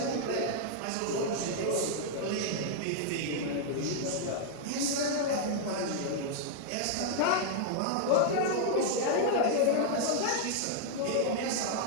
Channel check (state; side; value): different; both; correlation -0.01